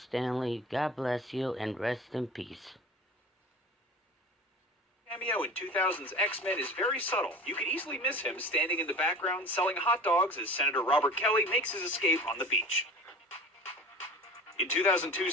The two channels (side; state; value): both; normal; correlation 0.37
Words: Lee. God bless you and rest in peace. Cameo in 2000's X-Men is very subtle. You could easily miss him standing in the background selling hot dogs as Senator Robert Kelly makes his escape on the beach. In